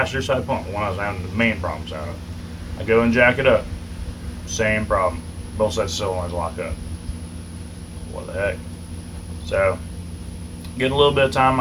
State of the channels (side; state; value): both; identical; correlation 1.00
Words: side pump, the one I was having the main problems out of. I go and jack it up, same problem. Both sets of solenoids lock up. What the heck? So, getting a little bit of time in